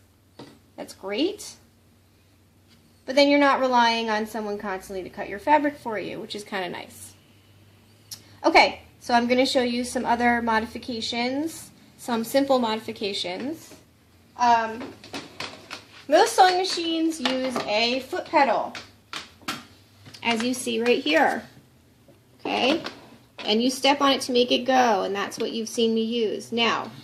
that's great. But then you're not relying on someone constantly to cut your fabric for you, which is kind of nice. Okay, so I'm going to show you some other modifications, some simple modifications. Most sewing machines use a foot pedal, as you see right here. Okay, and you step on it to make it go, and that's what you've seen me use. Now,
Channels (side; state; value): both; identical; correlation 1.00